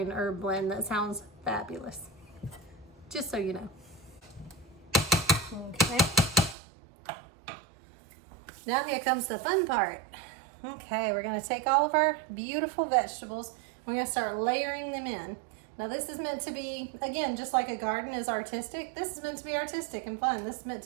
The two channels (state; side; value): drops out; left; at 6.6 s